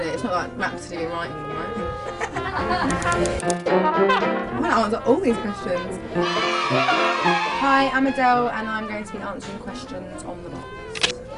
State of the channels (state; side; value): identical; both; correlation 1.00